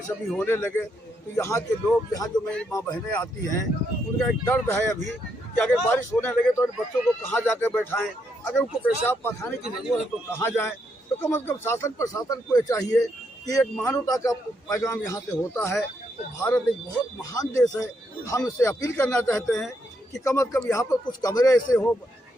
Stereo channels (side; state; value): both; normal; correlation 0.77